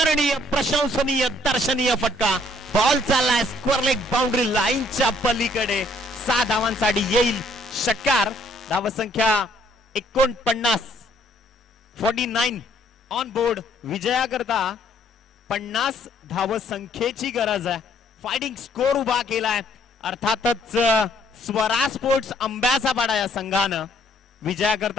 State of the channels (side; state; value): both; normal; correlation 0.65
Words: प्रशंसनीय, दर्शनीय फटका. बॉल चाललाय स्क्वेअर लेग बाउंड्री लाईनच्या पलीकडे. 6 धावांसाठी येईल षटकार. धावसंख्या 49 ऑन बोर्ड. विजयाकरता 50 धावसंख्येची गरज आहे. फायटिंग स्कोर उभा केलाय. अर्थातच स्वरा स्पोर्ट्स आंब्याचा पाडा या संघानं